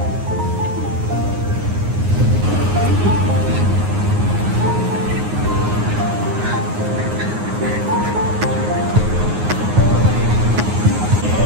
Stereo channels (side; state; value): left; late; 9.6 ms